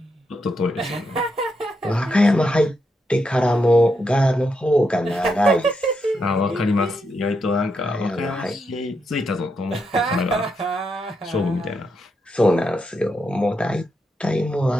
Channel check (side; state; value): both; normal; correlation 0.82